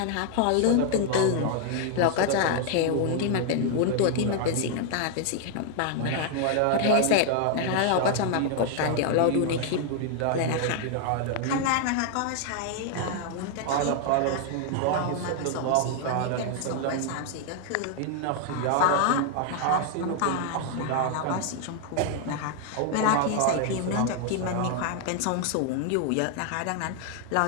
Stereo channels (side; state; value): both; different; correlation 0.00